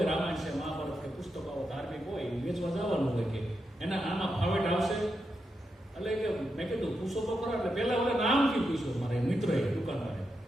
રામાયણ છે, મહાભારત કે પુસ્તકો ધાર્મિક હોય વેચવા જવાનું હોય કે એના આમાં ફાવેટ આવશે. એટલે કે મેં કીધું પૂછો તો ખરા. એટલે પહેલા ઓલા નામથી પૂછ્યું મારે મિત્રએ દુકાનવાળે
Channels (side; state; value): both; normal; correlation 0.86